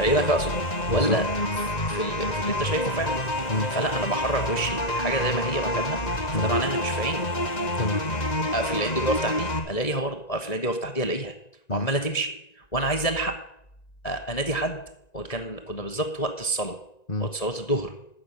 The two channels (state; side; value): late; right; 1.9 ms